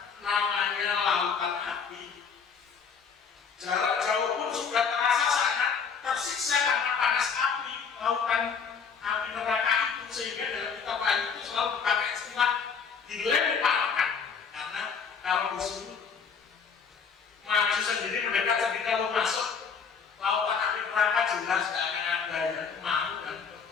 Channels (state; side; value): quieter; right; 6.1 dB